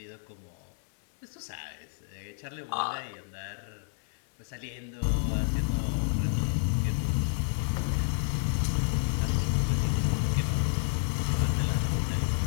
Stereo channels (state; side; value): silent; right; 58 dB below the other